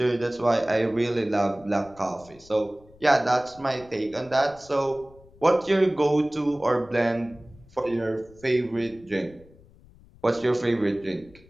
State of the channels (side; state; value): left; noise; rumble, 25 dB below the sound